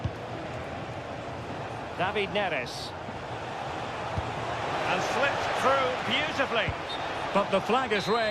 David Neres. And slipped through beautifully. But the flag is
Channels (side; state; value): both; identical; correlation 1.00